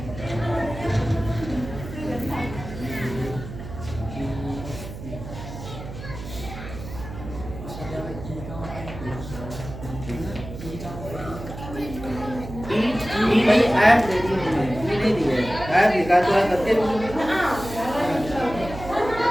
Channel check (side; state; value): right; noise; hum, 11 dB below the sound